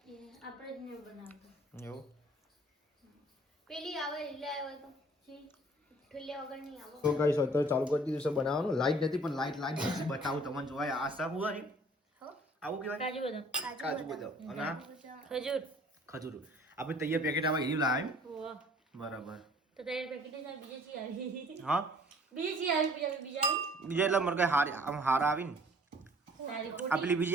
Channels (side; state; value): both; normal; correlation 0.54